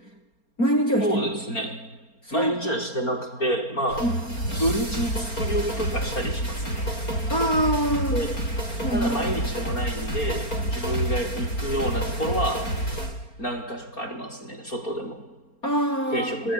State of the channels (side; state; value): right; late; 4.3 ms